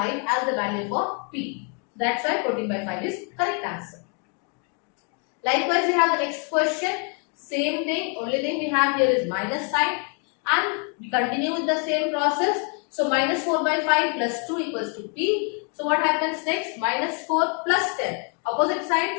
as the value for P. That's why 14 by 5 is correct answer. Likewise, we have the next question. Same thing. Only thing we have here is minus sign. And we continue with the same process. So minus 4 by 5 plus 2 equals to P. So what happens next? Minus 4 plus 10. Opposite side.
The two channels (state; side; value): quieter; right; 39.0 dB